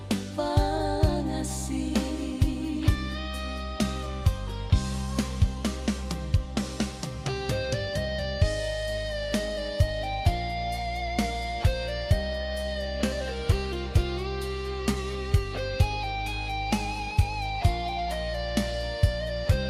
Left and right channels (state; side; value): identical; both; correlation 1.00